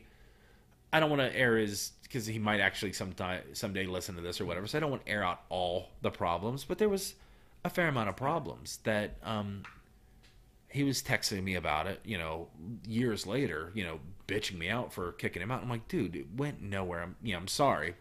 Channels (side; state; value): both; identical; correlation 1.00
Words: I don't want to air his because he might actually someday listen to this or whatever. So I don't want to air out all the problems, but there was a fair amount of problems that he was texting me about it. Years later, bitching me out for kicking him out. I'm like, dude, it went nowhere. I'm sorry,